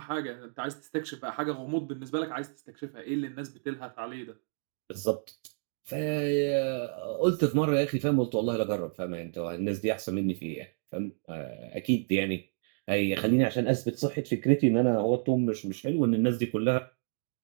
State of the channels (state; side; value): silent; left; digital silence